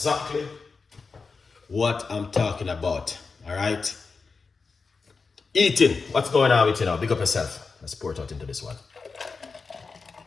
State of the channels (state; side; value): quieter; right; 4.6 dB